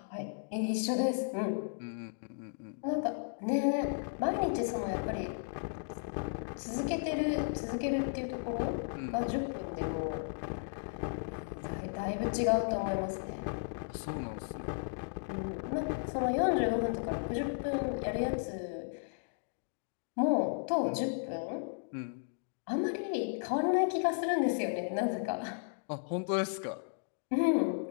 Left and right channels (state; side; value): silent; right; digital silence